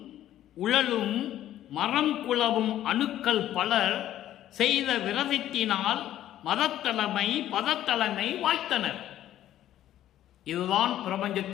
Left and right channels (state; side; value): quieter; right; 12.5 dB